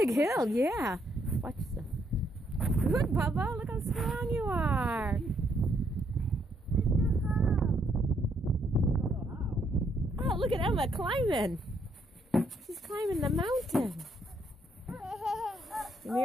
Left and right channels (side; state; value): both; normal; correlation 0.72